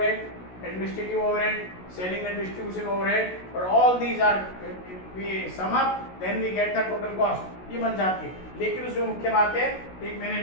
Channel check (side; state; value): right; late; 16 ms